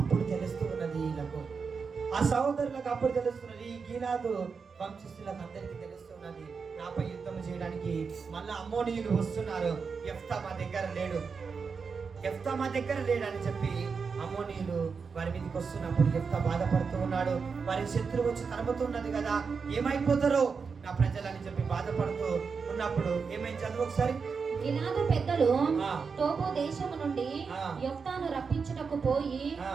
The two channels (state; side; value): quieter; left; 5.4 dB